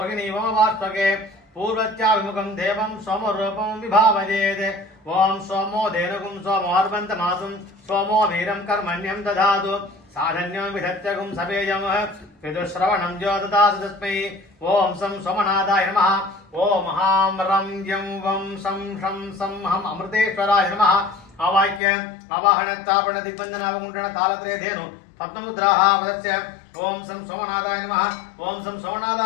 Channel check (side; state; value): right; drops out; at 21.8 s